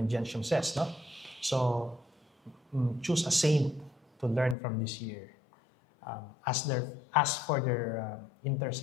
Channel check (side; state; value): right; drops out; at 4.5 s